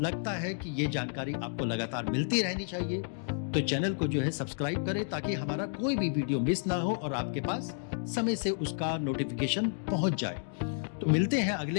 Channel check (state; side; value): silent; right; digital silence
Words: लगता है कि ये जानकारी आपको लगातार मिलती रहनी चाहिए तो चैनल को जो है सब्सक्राइब करें, ताकि हमारा कोई भी वीडियो मिस ना हो और आपके पास समय से उसका नोटिफिकेशन पहुंच जाए। तो मिलते हैं